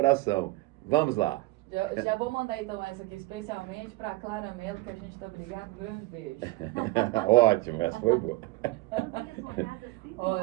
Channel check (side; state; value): left; quieter; 20.3 dB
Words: Vamos lá. Já vou mandar então essa aqui especialmente para a Clara Mello, que a gente está brigado. Grande beijo. Ótimo, essa foi boa.